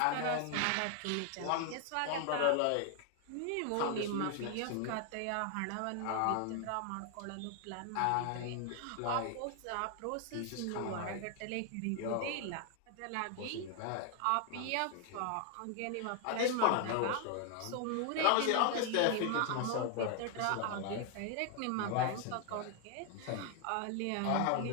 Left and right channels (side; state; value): both; different; correlation 0.00